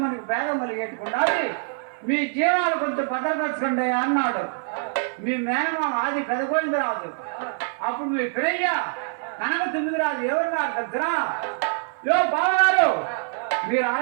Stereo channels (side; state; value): left; silent; 55 dB below the other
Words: మనకు భేదం కలిగేట్టుకుండా మీ జీవాలు కొంచెం భద్రపరచుకోండి అన్నాడు మీ మేనమామ ఆది పెదగోవిందరాజు. అప్పుడు మీ పిల్లయ్య కనక తొమ్మిదిరాజు ఎవరున్నారు దగ్గర, యో బావగారు, మీరు